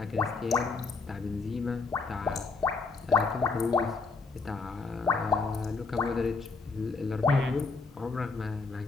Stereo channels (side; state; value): right; quieter; 4.3 dB